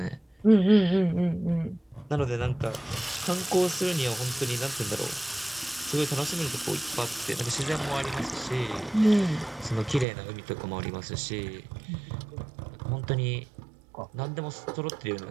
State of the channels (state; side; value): drops out; left; at 10.1 s